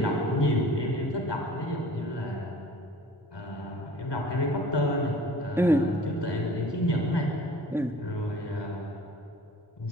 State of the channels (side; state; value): both; normal; correlation 0.47